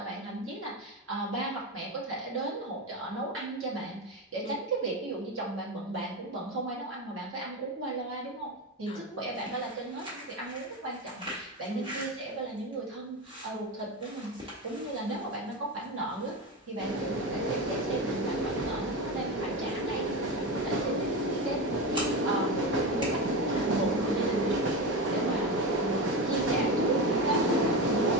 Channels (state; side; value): normal; both; correlation 0.19